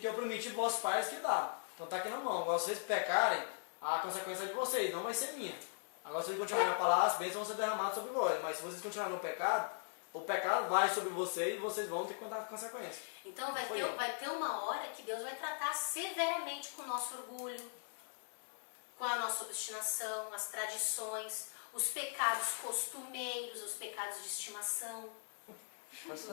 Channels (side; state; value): right; silent; digital silence